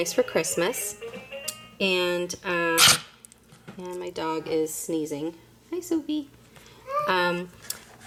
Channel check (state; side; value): identical; both; correlation 1.00